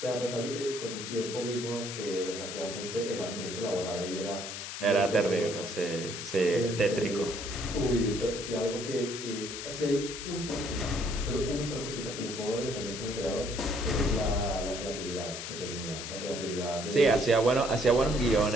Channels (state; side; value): noise; left; hiss, 7 dB below the sound